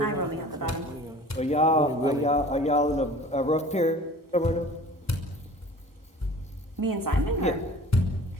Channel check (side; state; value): both; normal; correlation 0.44